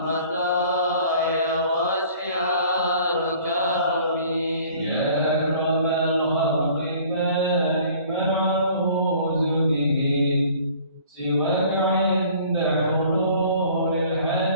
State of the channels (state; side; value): inverted; both; correlation -0.52